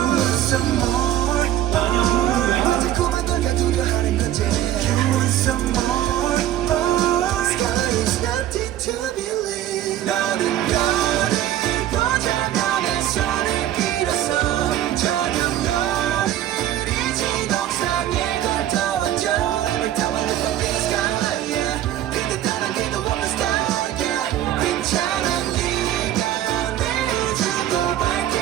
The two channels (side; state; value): left; quieter; 12.4 dB